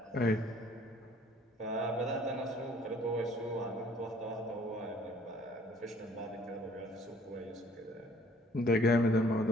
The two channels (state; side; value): normal; both; correlation 0.57